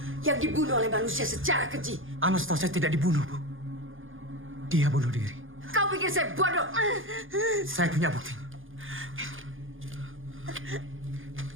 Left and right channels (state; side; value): late; left; 0.58 ms